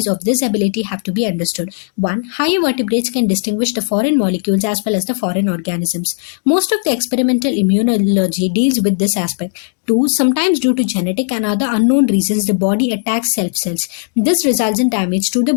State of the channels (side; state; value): right; silent; digital silence